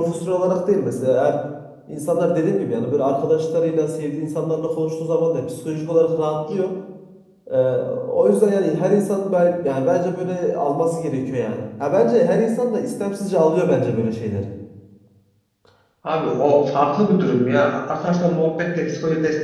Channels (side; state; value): both; identical; correlation 1.00